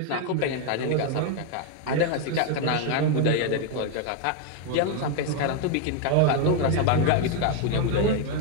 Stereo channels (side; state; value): both; different; correlation 0.01